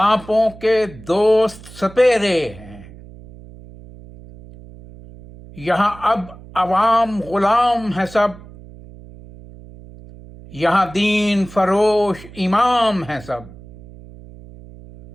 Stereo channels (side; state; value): right; noise; hum, 19 dB below the sound